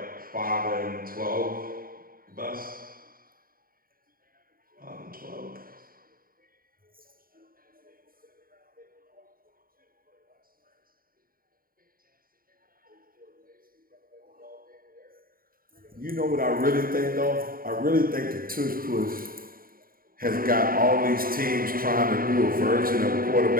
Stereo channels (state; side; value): late; left; 0.42 ms